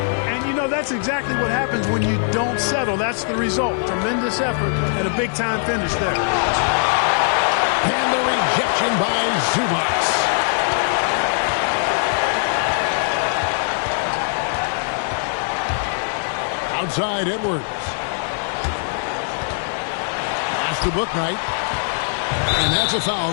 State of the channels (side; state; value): right; silent; 59 dB below the other